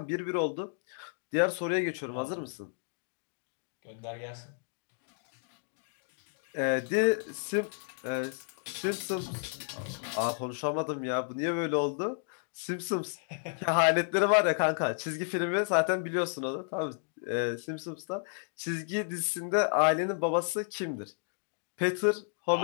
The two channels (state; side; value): silent; right; digital silence